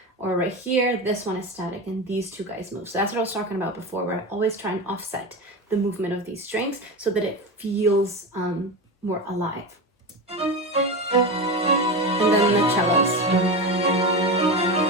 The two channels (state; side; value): normal; both; correlation 0.21